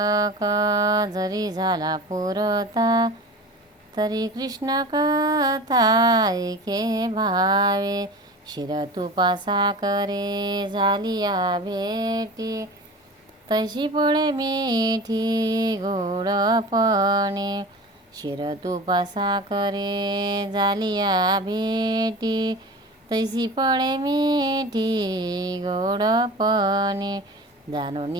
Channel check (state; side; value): normal; both; correlation 0.35